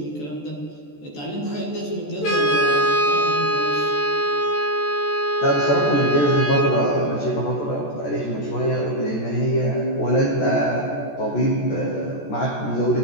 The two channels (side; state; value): right; late; 14 ms